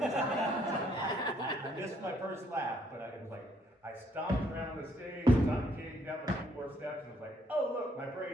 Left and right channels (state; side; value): normal; both; correlation 0.68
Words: missed my first laugh, but it was like, I stomped around the stage, Johnny came down the 2 more steps, and was like, oh look, my